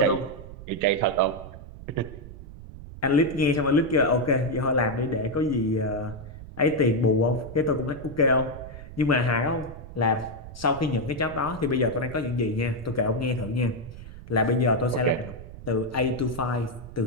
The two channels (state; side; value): noise; right; rumble, 14 dB below the sound